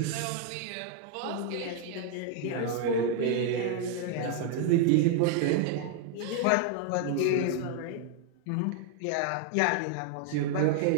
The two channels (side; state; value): both; different; correlation 0.00